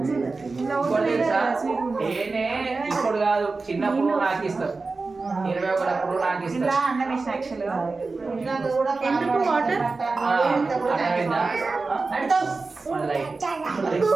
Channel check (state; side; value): quieter; left; 3.9 dB